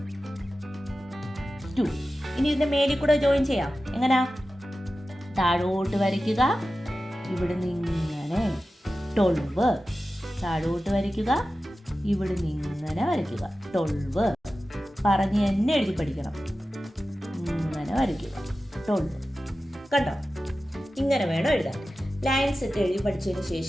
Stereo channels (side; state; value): both; normal; correlation 0.94